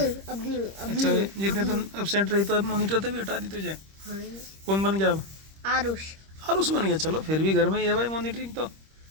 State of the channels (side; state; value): left; late; 26 ms